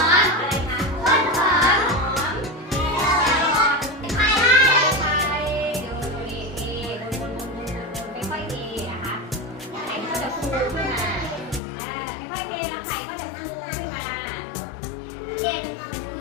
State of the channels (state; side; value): drops out; right; at 11.6 s